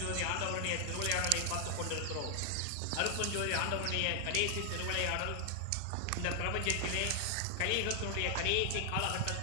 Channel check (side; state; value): both; different; correlation 0.00